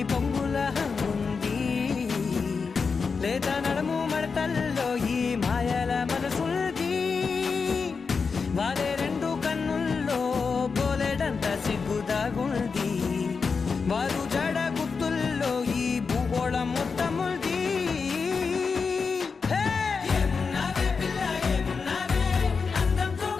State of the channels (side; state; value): right; quieter; 5.1 dB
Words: పొంగుల హంగుంది లేదా నడము మడతల్లో ఈ మాయల మనసుంది వారే రెండు కన్నుల్లో బోలెడంత సిగ్గుదాగుంది వారు జడ గుర్తుల్లో ఈ భూగోళం మొత్తముంది ఏమున్నావే పిల్ల ఏమున్నావే అందంతో